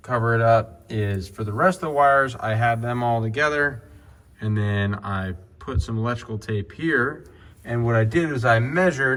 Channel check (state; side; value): identical; both; correlation 1.00